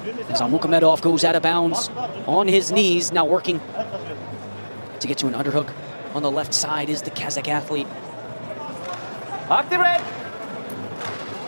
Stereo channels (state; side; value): inverted; both; correlation -1.00